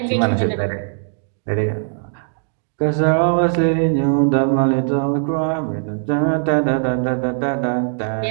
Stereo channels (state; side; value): silent; left; digital silence